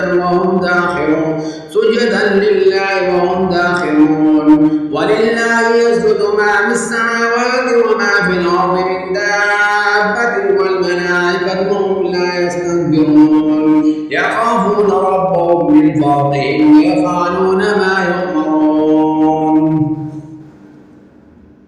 سجدا لله وهم داخرون ولله يسجد ما في السماوات وما في الأرض من دابة والملائكة وهم لا يستكبرون يخافون ربهم من فوقهم ويفعلون ما يؤمرون.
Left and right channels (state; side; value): identical; both; correlation 1.00